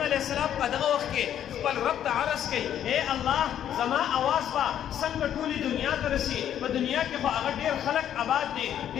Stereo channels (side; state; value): right; quieter; 10.2 dB